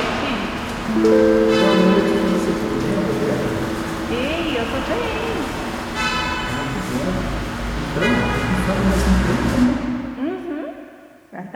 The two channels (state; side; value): identical; both; correlation 1.00